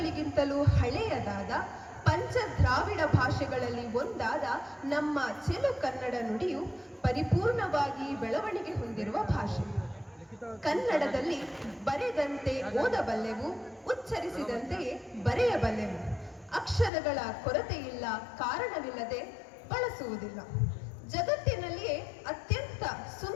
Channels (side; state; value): right; drops out; at 16.9 s